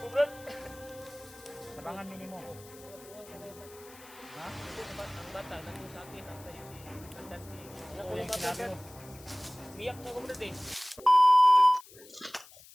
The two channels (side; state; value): left; noise; hiss, 21 dB below the sound